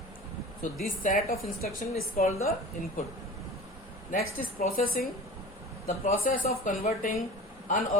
So this set of instruction is called the input. Next is processing. The process of converting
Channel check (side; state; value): both; normal; correlation 0.38